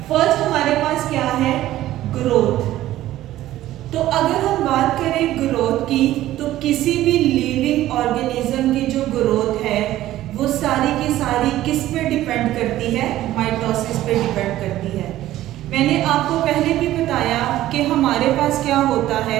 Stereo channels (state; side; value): quieter; left; 14.4 dB